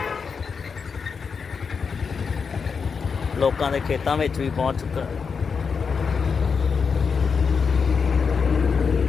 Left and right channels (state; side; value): quieter; right; 5.7 dB